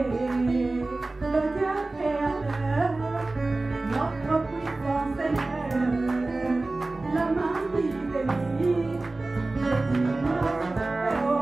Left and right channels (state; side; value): quieter; left; 3.1 dB